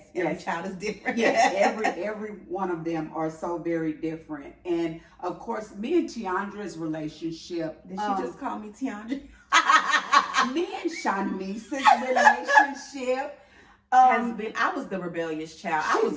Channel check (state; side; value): identical; both; correlation 1.00